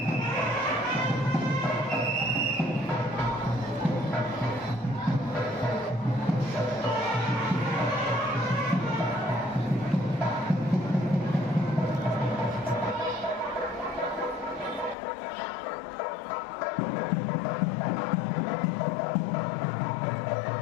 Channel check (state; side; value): drops out; right; at 15.0 s